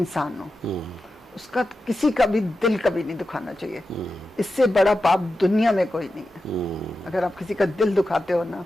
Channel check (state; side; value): normal; both; correlation 0.91